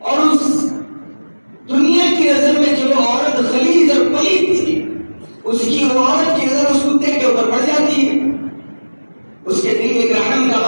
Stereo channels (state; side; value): inverted; both; correlation -1.00